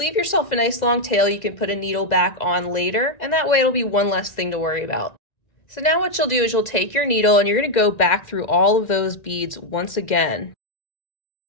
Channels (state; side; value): late; right; 2.0 ms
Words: yourself a nice long tail. You can put a needle back on later, and that way it'll be one less thing to worry about. So now what you'll do is you'll take your needle and you're going to go back through all of those beads once again.